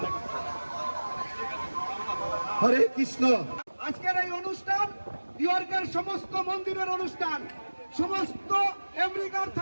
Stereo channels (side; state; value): both; inverted; correlation -1.00